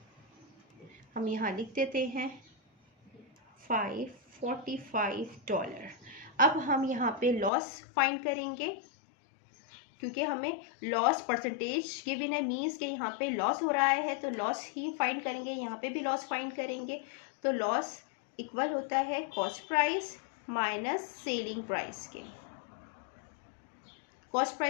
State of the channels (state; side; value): drops out; right; at 7.5 s